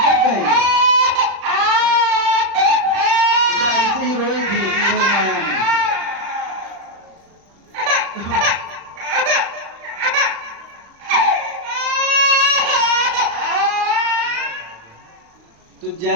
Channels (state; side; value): late; left; 35 ms